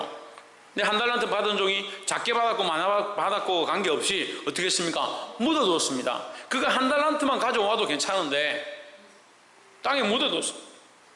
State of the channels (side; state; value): both; identical; correlation 1.00